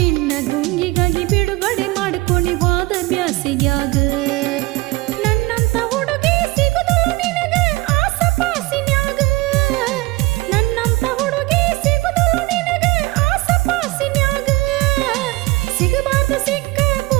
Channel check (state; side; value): quieter; left; 21.2 dB